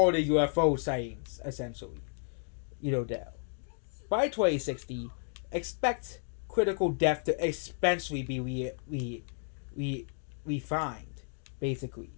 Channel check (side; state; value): right; silent; 56 dB below the other